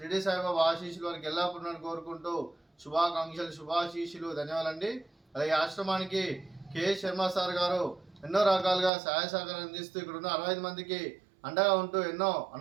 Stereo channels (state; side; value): drops out; left; at 8.9 s